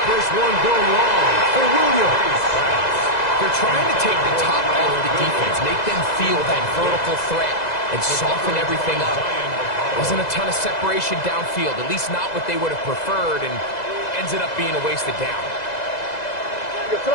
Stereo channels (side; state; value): right; late; 2.0 ms